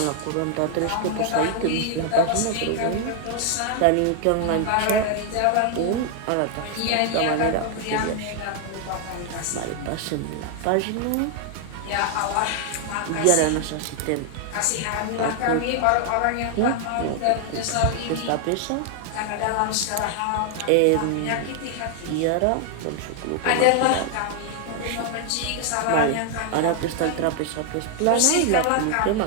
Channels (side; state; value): both; different; correlation 0.00